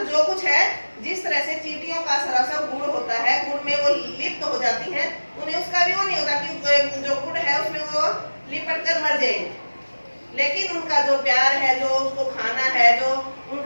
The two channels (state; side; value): inverted; both; correlation -1.00